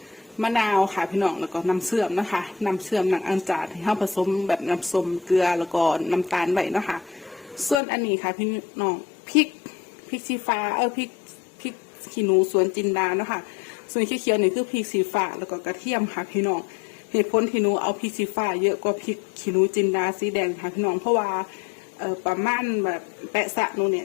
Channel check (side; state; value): right; drops out; at 7.8 s